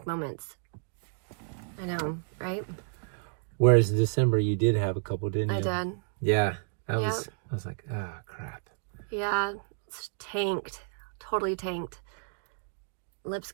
moments. I know, right? Whereas in December you did have a couple, didn't you? I did. Yeah. I was like, oh, crap. Yeah, it's tanked. Totally tanked. Lips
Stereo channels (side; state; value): left; silent; digital silence